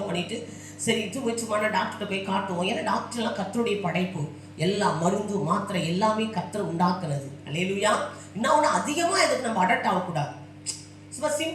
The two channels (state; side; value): identical; both; correlation 1.00